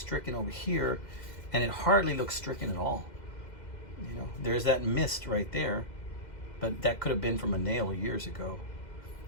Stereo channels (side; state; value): right; late; 2.1 ms